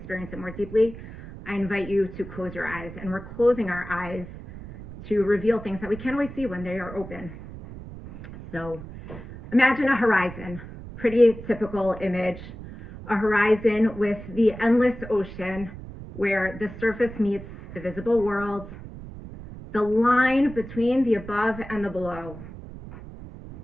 it more deeply, I invite you to close your eyes, and we're closing our eyes to reveal things that we can't always see when they are open. So imagine a horizon, pretty typical image, a horizon with the endless ocean where the surface meets the visible world, the line between the above and the below.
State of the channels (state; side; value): noise; right; rumble, 13 dB below the sound